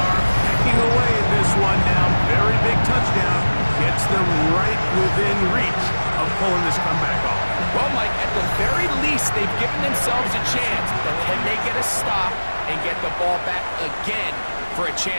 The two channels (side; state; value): both; inverted; correlation -1.00